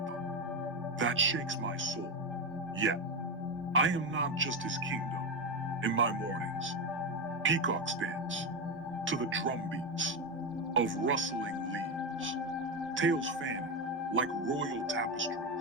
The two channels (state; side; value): normal; both; correlation 0.12